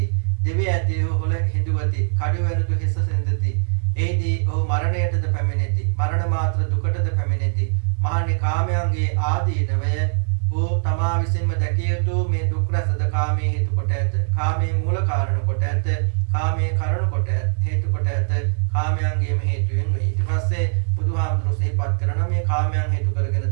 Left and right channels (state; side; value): silent; left; 64 dB below the other